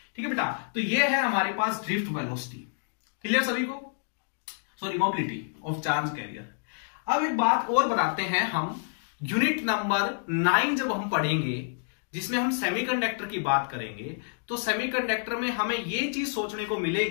ठीक है बेटा, तो ये है हमारे पास ड्रिफ्ट वेलोसिटी। क्लियर सभी को? Sorry, mobility of charge carrier. अब एक बात और बताते हैं हम, यूनिट नंबर 9 जब हम पढ़ेंगे जिसमें हम सेमीकंडक्टर की बात करेंगे, तो सेमीकंडक्टर में हमें ये चीज सोचने को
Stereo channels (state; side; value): silent; right; digital silence